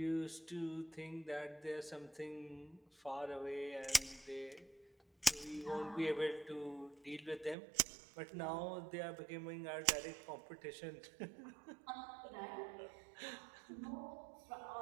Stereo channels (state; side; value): drops out; left; at 7.6 s